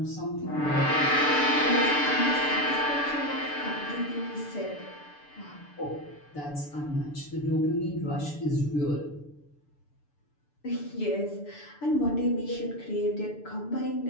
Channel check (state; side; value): late; right; 6.8 ms